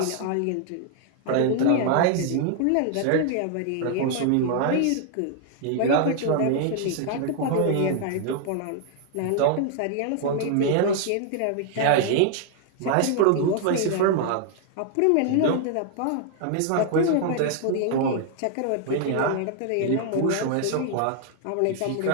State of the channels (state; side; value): different; both; correlation 0.00